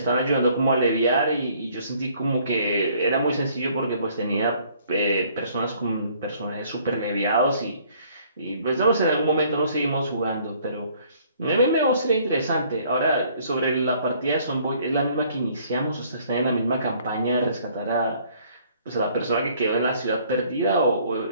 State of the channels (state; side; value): inverted; both; correlation -0.60